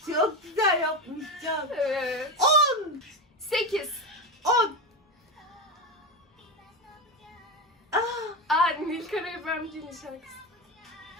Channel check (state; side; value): normal; both; correlation 0.17